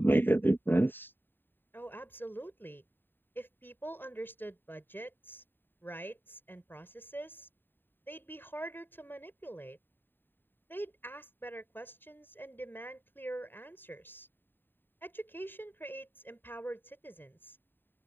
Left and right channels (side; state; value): right; late; 0.095 ms